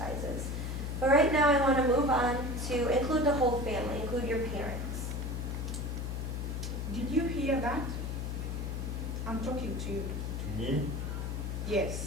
But right now I want to move on to include the whole family, include your parents. Did you hear that? I'm talking to you. To me?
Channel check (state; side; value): noise; left; hum, 3 dB below the sound